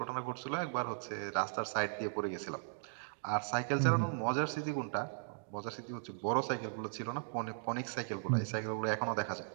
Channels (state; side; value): silent; left; digital silence